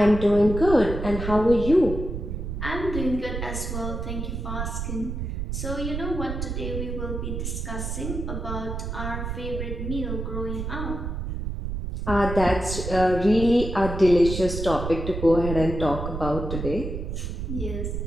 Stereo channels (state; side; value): noise; right; rumble, 5 dB below the sound